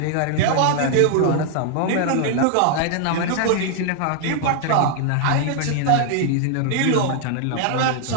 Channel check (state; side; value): different; both; correlation 0.00